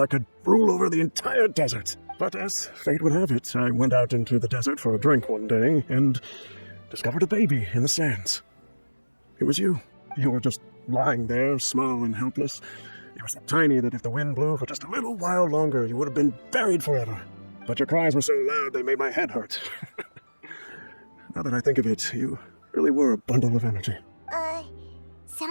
could rule over the entire desert. But as fate would have it, I went out into the desert for a drink one day and discovered a baby in the sands. It was you. You were just lying there, small and helpless. You were so tiny that if the wind blew for just a little while longer, you would have been buried forever. But your cries were so loud they made my head hurt. Now that I think of it, you really were a bundle of energy. Sounds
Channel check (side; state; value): both; inverted; correlation -1.00